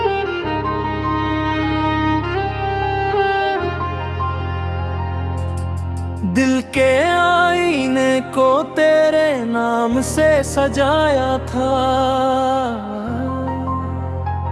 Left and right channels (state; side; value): identical; both; correlation 1.00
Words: दिल के आईने को तेरे नाम से सजाया था,